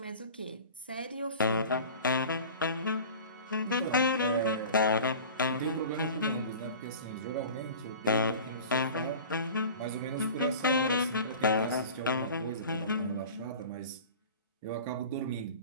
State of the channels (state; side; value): inverted; both; correlation -0.39